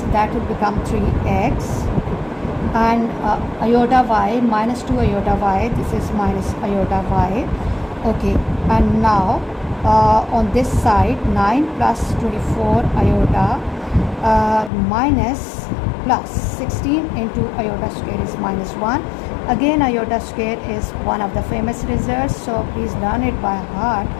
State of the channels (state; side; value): drops out; right; at 14.7 s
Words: that will become 3x, and iota y minus 2 iota y, this is minus iota y. Okay, and now on this side 9 plus 24 iota minus plus 16 into iota square is minus 1. Again, iota square is one of the famous results, so please learn it by heart.